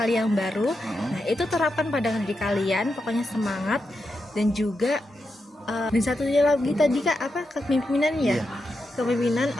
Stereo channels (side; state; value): both; normal; correlation 0.87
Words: yang baru. Nah, itu terapkan pada diri kalian, pokoknya semangat. Dan juga dan satunya lagi tadi Kak, apa, kepemimpinan ya? Iya. Kepemimpinan